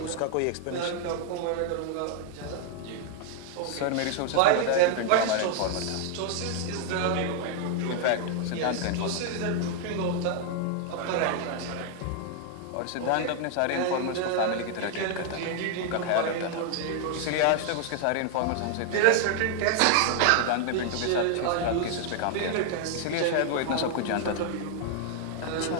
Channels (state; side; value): different; both; correlation 0.00